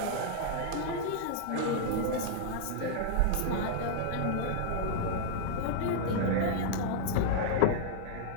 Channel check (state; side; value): different; both; correlation -0.01